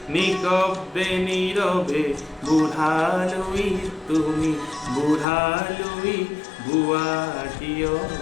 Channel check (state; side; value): drops out; right; at 5.2 s